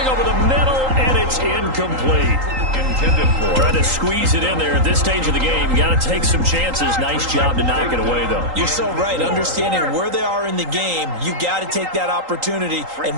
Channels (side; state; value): left; late; 3.8 ms